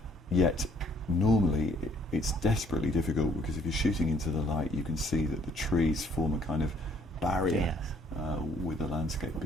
yet normally it's desperately difficult, because if you're shooting into the light, you can see that the trees form a kind of barrier. Yes. With the landscape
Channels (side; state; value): both; normal; correlation 0.62